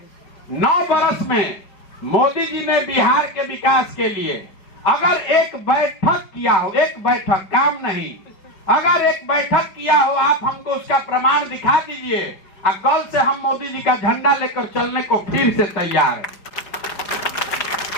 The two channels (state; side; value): late; right; 4.9 ms